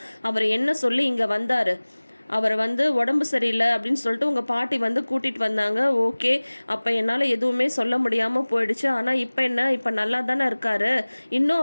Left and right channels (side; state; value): both; inverted; correlation -1.00